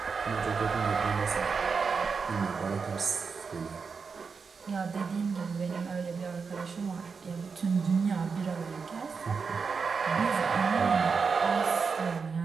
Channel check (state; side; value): quieter; left; 5.3 dB